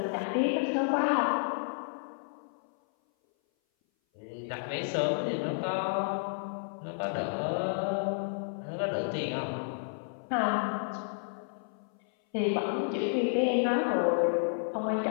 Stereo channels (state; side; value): silent; right; 57 dB below the other